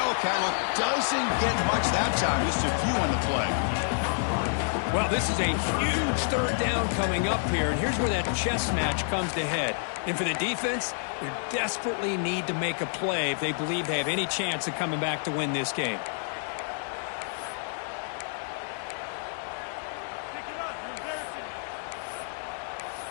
look doesn't get much that time. Just a few on the play. Well, this is a huge third down coming up here, and here's where that chess match comes to head. And for the defense, they desperately need to make a play if they believe they have any chance of coming back to win this game.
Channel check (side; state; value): right; silent; digital silence